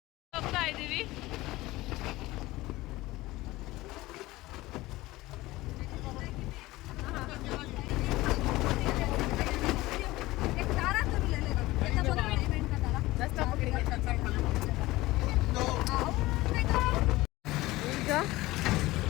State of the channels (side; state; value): right; quieter; 18.8 dB